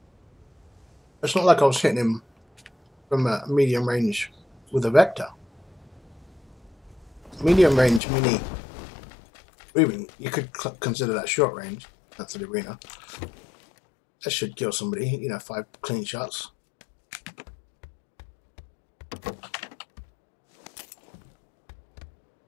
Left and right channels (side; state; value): right; drops out; at 8.0 s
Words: It's not like I was hitting him from a medium range with a Vector. Medium range Mini, even you could consider that short range. That's the arena. That should kill somebody. You know, 5 clean shots.